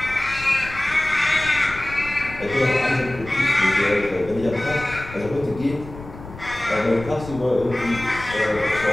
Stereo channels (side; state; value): left; noise; rumble, 15 dB below the sound